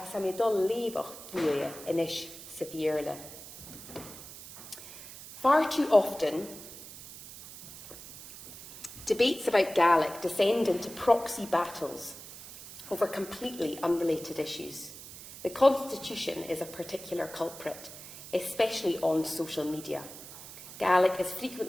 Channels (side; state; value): right; noise; hiss, 14 dB below the sound